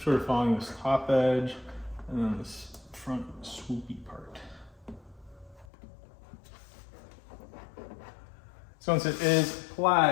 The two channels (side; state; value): right; drops out; at 5.7 s